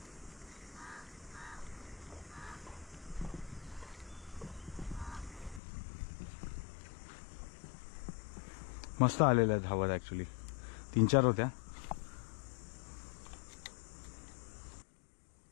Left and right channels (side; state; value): right; drops out; at 5.6 s